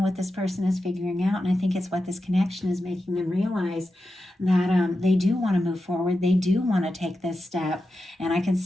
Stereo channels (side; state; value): both; normal; correlation 0.90